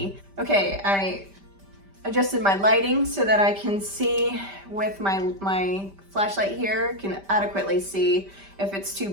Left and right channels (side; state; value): left; late; 5.1 ms